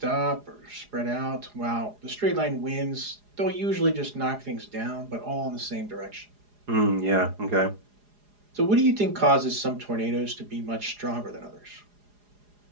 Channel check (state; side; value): late; left; 4.8 ms